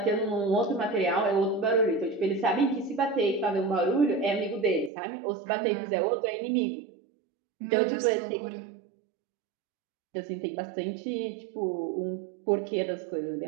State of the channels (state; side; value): drops out; left; at 4.9 s